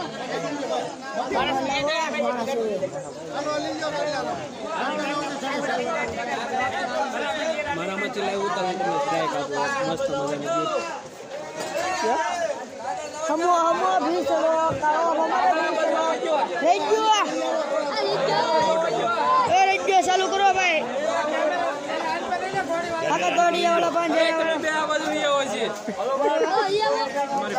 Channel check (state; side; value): identical; both; correlation 1.00